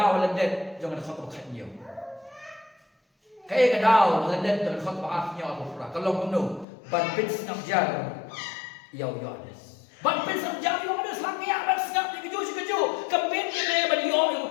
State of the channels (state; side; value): drops out; right; at 6.7 s